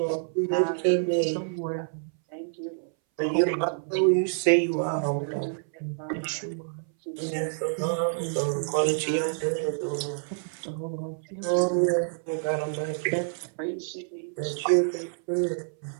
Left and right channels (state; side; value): silent; left; 60 dB below the other